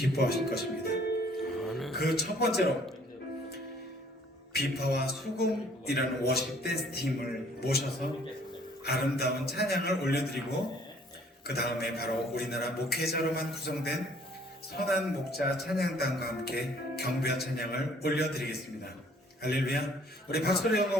기뻐하실 것입니다. 그 첫 번째로 비파와 수금이라는 워십 댄스 팀을 모셔서 아름다운 찬양을 올려드리고, 그 다음에 바로 우리나라 목회자로만 구성된 선한 목자 찬양단과 함께 경배와 찬양을 올려드리겠습니다. 할렐루야. 우리 박수로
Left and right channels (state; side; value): normal; both; correlation 0.58